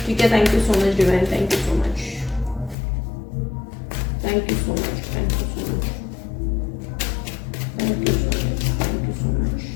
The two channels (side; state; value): right; drops out; at 2.8 s